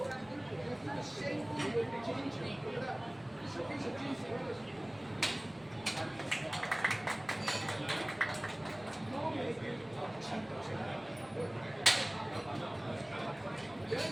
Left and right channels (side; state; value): right; noise; rumble, 28 dB below the sound